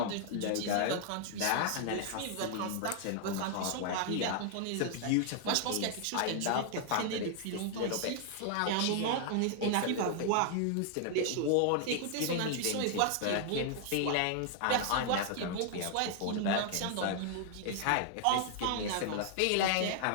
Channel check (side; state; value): both; different; correlation 0.00